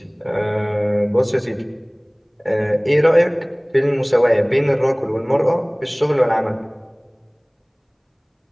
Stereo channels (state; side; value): identical; both; correlation 1.00